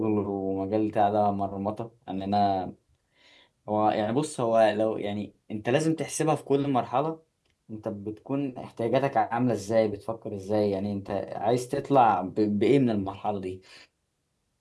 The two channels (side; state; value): both; identical; correlation 1.00